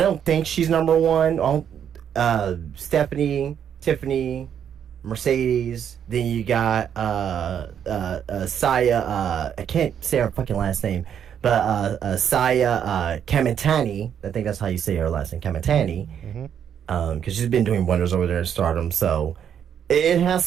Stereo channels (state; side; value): quieter; left; 8.7 dB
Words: don't think she's number 1. Stephanie, Tiffany, Mercedes. Then you got Saya. I can't say her fucking last name, Saya Kamitani, I think that's how you say her last name, Kamitani, because she's been doing wonders over there in Stardom. So it has